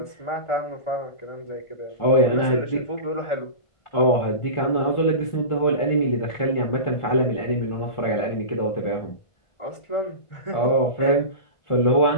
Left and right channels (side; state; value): right; late; 1.5 ms